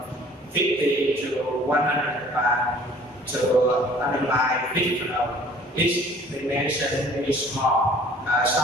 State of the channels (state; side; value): normal; both; correlation 0.52